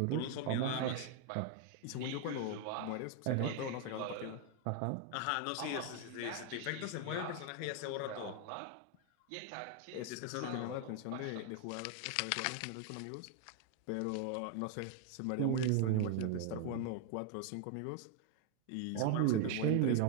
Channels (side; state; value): both; different; correlation 0.01